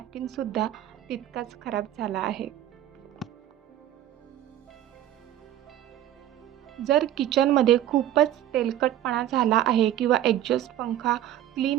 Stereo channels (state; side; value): quieter; left; 12.2 dB